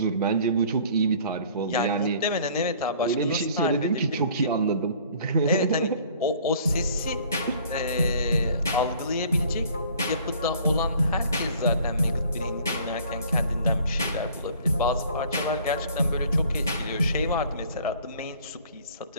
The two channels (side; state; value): both; inverted; correlation -0.53